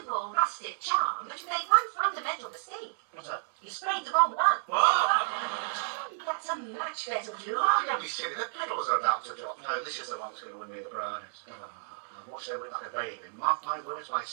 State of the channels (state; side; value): silent; left; 57 dB below the other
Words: rustic charm, but you made one fundamental mistake. What's that? You sprayed the wrong one. Oh! That's a much better blue. Oh, don't be silly. The petals are about to drop. No, this is the one that's going to win me the prize. I'll watch over it like a baby. Mark my words, by